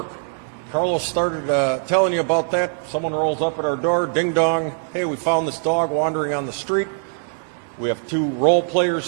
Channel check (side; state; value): left; silent; digital silence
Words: Carlos started telling you about that. Someone rolls up at our door, ding dong. Hey, we found this dog wandering on the street. We have 2 role